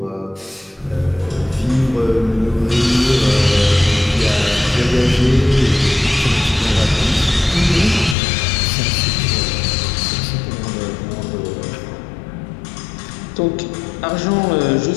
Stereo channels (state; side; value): drops out; right; at 8.2 s